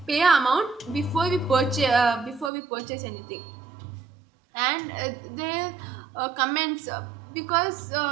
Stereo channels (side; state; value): left; drops out; at 2.5 s